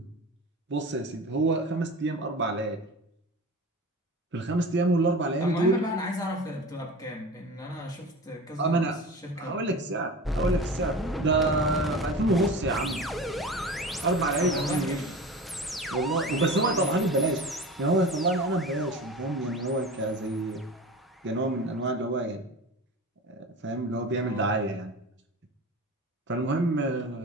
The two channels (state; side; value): normal; both; correlation 0.33